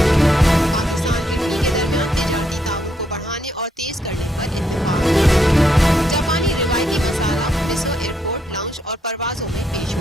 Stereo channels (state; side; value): normal; both; correlation 0.76